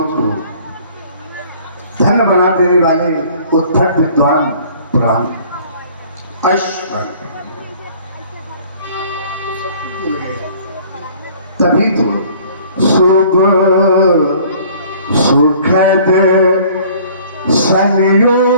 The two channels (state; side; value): inverted; both; correlation -0.53